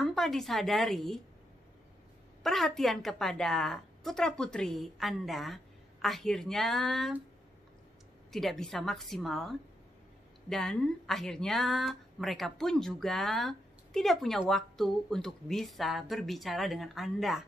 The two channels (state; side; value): normal; both; correlation 0.82